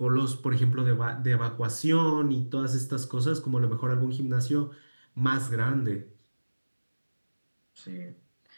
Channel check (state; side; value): inverted; both; correlation -1.00